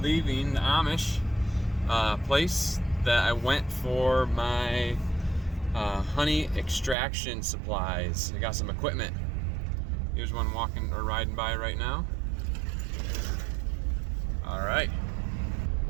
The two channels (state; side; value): drops out; left; at 7.0 s